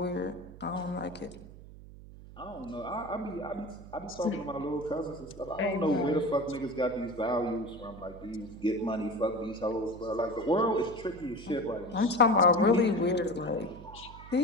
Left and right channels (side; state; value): right; noise; hum, 17 dB below the sound